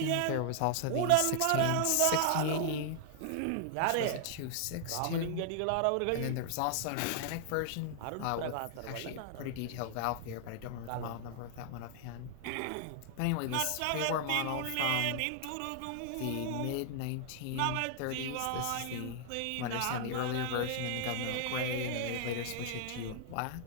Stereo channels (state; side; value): different; both; correlation 0.00